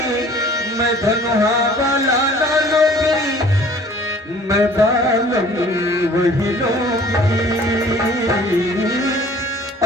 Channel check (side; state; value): both; normal; correlation 0.51